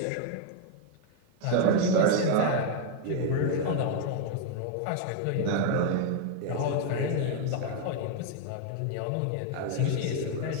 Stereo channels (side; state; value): both; different; correlation 0.01